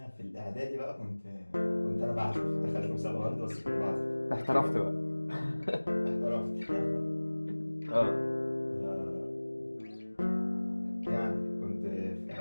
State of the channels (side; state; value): both; inverted; correlation -1.00